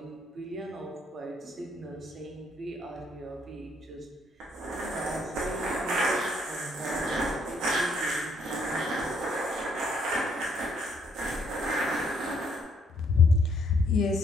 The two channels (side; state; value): both; normal; correlation 0.69